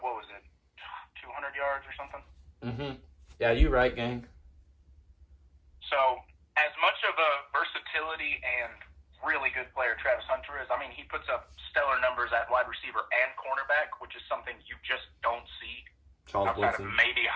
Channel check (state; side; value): identical; both; correlation 1.00